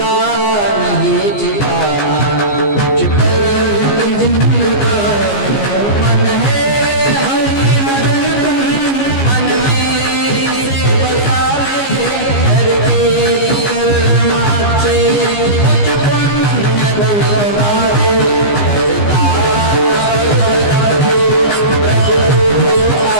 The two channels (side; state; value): right; late; 15 ms